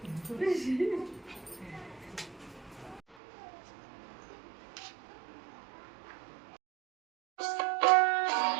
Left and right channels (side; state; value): left; drops out; at 3.2 s